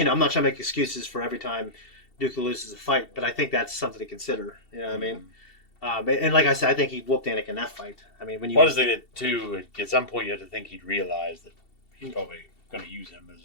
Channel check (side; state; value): right; late; 2.7 ms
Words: not trying to make excuses for every time Dooku loses a fight, but I think that's something to consider. You know what I mean? And like I said, I think he whooped Anakin in that fight. I mean, when you... What is it too? At some point, you have to think he'd realize that he's probably going to use him